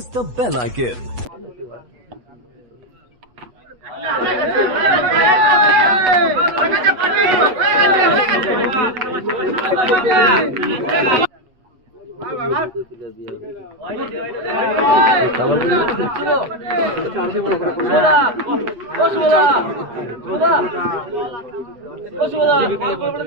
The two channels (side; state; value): left; late; 8.2 ms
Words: the bell icon.